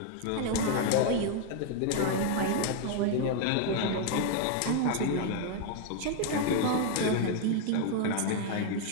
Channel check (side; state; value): both; different; correlation 0.00